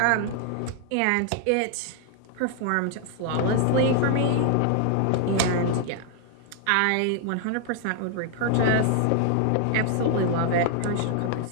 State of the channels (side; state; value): both; different; correlation 0.00